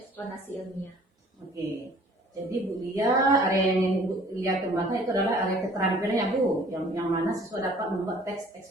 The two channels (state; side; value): normal; both; correlation 0.53